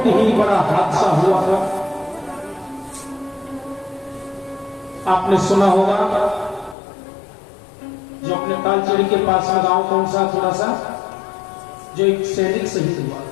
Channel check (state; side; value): drops out; right; at 6.8 s